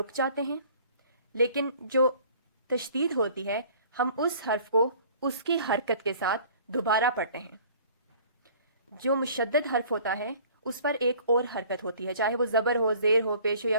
جاتے ہیں, لیکن جو تشدید ہوتی ہے ہم اس حرف کو اس کی حرکت کے ساتھ دوبارہ پڑھتے ہیں. جو مشدد حرف ہوتا ہے اس پر ایک اور حرکت ہوتی ہے, چاہے وہ زبر ہو, زیر ہو, پیش ہو یا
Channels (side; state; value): both; inverted; correlation -0.51